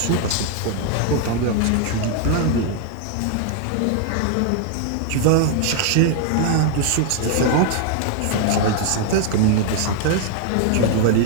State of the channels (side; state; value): both; different; correlation 0.00